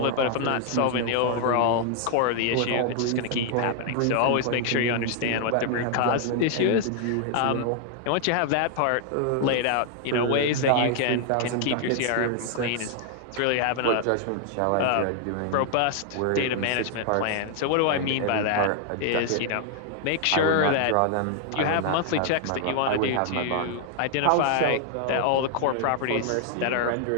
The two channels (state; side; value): different; both; correlation 0.00